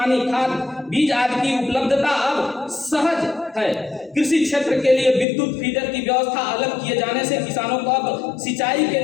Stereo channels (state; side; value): drops out; right; at 5.2 s